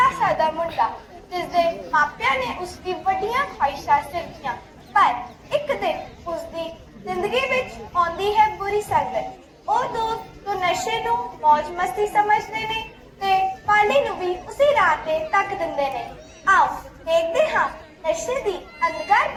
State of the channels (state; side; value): identical; both; correlation 1.00